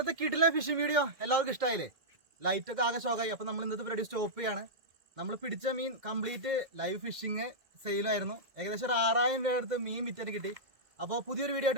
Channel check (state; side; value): late; left; 2.1 ms